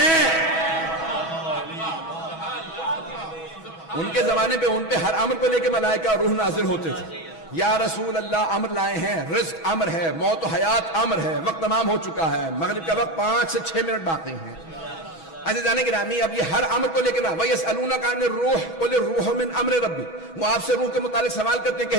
ان کے زمانے پہ ان پہ ہر امر کو لے کے ملائکہ روح نازل ہوتے تھے. یا رسول اللہ امر لائے ہیں, رزق امر ہے, موت و حیات امر ہے, وقت تمام ہو چکا ہے, مغرب کا وقت 5 سے 6 منٹ باقی ہیں. عزیزان گرامی اب یہ ہر امر کو لے کے نا, وَيَسْأَلُونَكَ عَنِ الرُّوحِ قُلِ الرُّوحُ مِنْ أَمْرِ رَبِّي. وہ آپ سے روح کے متعلق سوال کرتے ہیں,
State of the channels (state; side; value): late; right; 6.2 ms